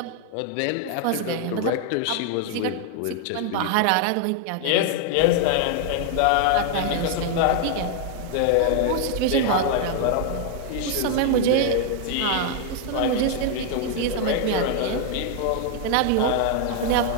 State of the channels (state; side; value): different; both; correlation 0.00